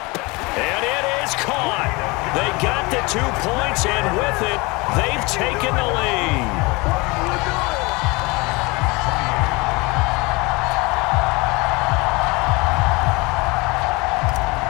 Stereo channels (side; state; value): right; quieter; 25.2 dB